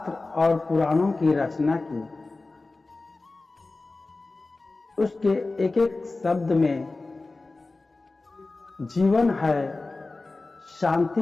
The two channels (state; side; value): quieter; right; 3.4 dB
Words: और पुराणों की रचना की, उसके एक एक शब्द में जीवन है,